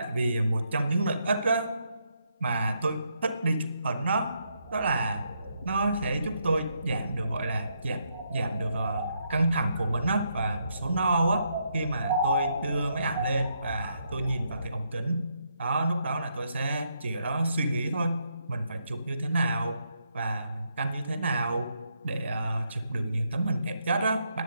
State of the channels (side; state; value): both; inverted; correlation -0.77